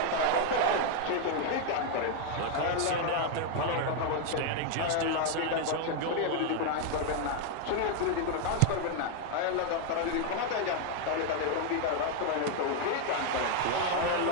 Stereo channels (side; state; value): both; different; correlation 0.00